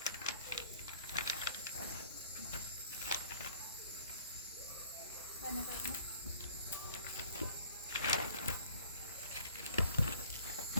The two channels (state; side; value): inverted; both; correlation -0.53